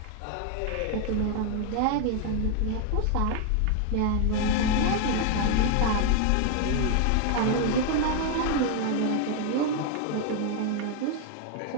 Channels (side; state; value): both; different; correlation 0.00